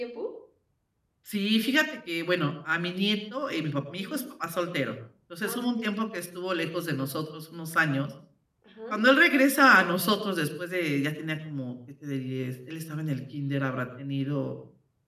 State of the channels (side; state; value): both; identical; correlation 1.00